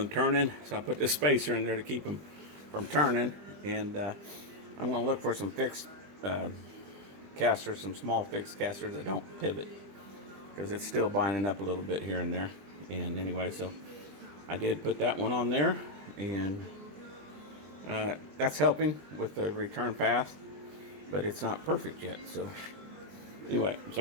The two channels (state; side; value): late; left; 20 ms